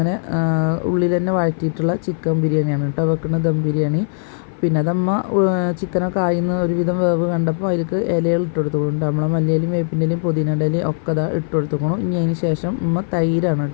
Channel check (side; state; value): right; silent; 56 dB below the other